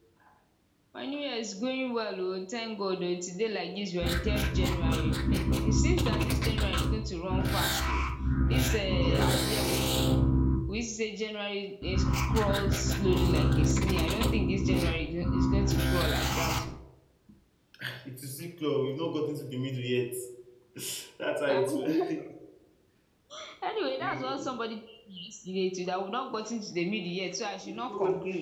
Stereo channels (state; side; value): identical; both; correlation 1.00